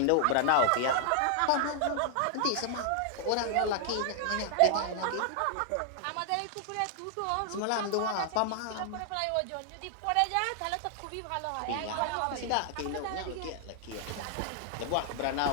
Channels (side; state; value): both; different; correlation 0.00